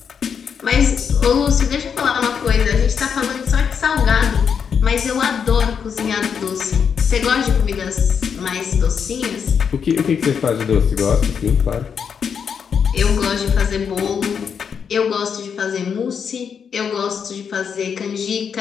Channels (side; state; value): right; quieter; 6.9 dB